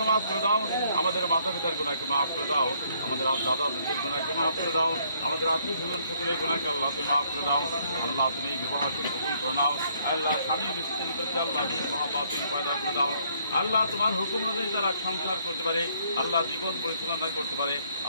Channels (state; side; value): inverted; both; correlation -0.67